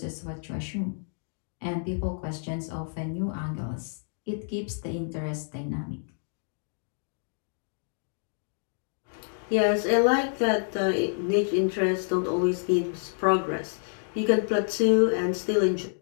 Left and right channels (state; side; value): silent; right; digital silence